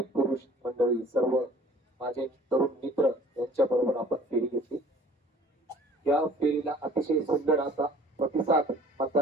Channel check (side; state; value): both; normal; correlation 0.50